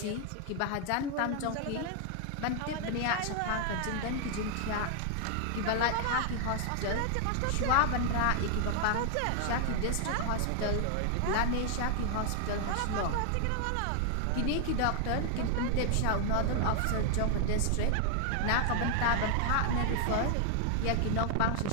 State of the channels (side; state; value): both; different; correlation 0.00